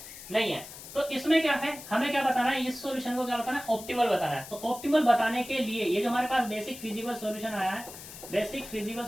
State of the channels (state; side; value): noise; left; hiss, 14 dB below the sound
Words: नहीं है। तो इसमें क्या है, हमें क्या बताना है, इस सॉल्यूशन को क्या बताना है, ऑप्टिमल बताना है। तो ऑप्टिमल बताने के लिए ये जो हमारे पास बेसिक फिजिबल सॉल्यूशन आया है, बेसिक फिजिबल